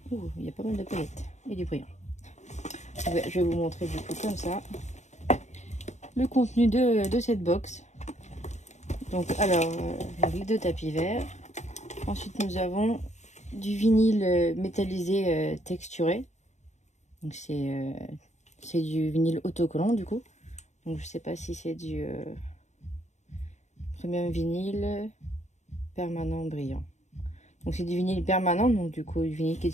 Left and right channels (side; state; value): right; late; 0.34 ms